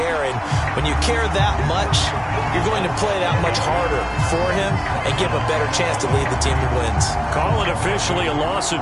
And when you care that much, you're going to play that much harder for him and give him a better chance to lead the team to wins. Call it officially a loss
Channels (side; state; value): both; identical; correlation 1.00